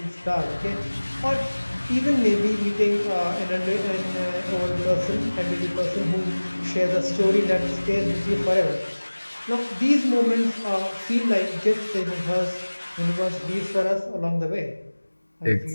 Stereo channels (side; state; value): both; inverted; correlation -1.00